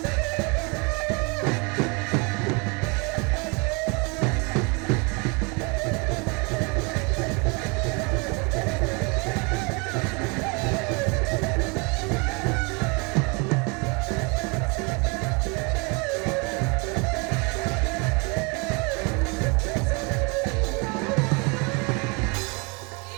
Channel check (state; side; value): quieter; left; 30.8 dB